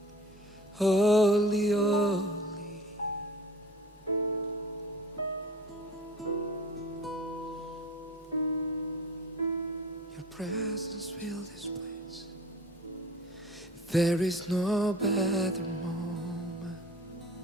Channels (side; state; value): both; normal; correlation 0.44